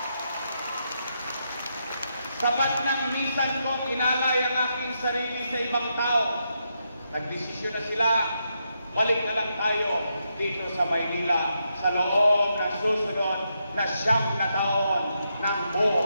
Sapat ng minsan kong inalay ang aking sarili sa ibang tao. Nagdesisyon na sila, balik na lang tayo dito sa Maynila sa loob ng susunod na 9 na taon ng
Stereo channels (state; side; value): inverted; both; correlation -0.82